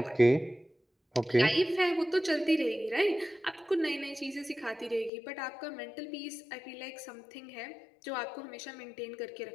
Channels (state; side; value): drops out; right; at 5.1 s